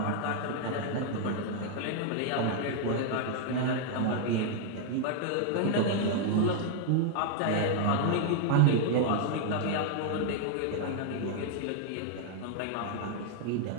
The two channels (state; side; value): different; both; correlation 0.00